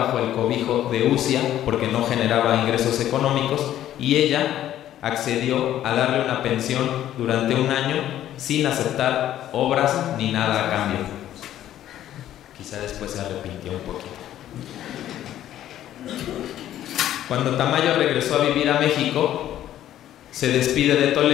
el cobijo de Ucia porque no generaba ingresos económicos, y ella accedió a darle una pensión durante un año sin aceptar obras ni nada a cambio. Quizá después se arrepintió un poquito. Cuando Tamayo regresó a vivir a México, se despide de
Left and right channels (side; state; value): right; quieter; 12.2 dB